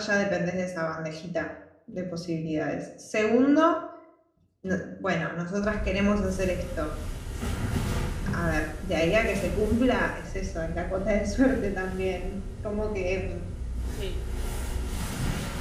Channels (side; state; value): both; identical; correlation 1.00